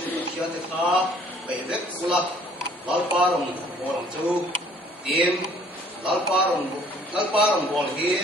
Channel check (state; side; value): normal; both; correlation 0.57